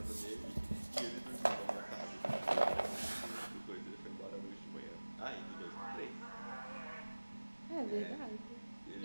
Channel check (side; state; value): both; inverted; correlation -1.00